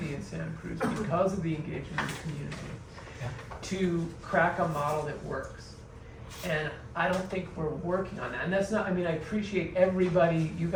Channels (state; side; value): identical; both; correlation 1.00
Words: in Santa Cruz because of the engagement of the community to crack a model that works. And I don't think we're working on that. And that's not, I mean, I appreciate everybody, you